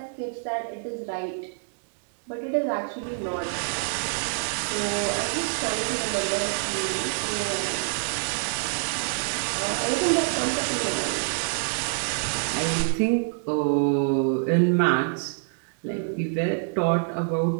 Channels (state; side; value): silent; left; digital silence